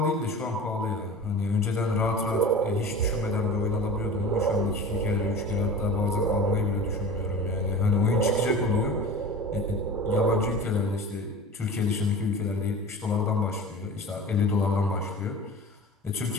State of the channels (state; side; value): normal; both; correlation 0.36